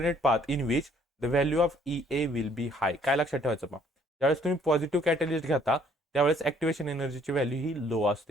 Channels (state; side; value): normal; both; correlation 0.62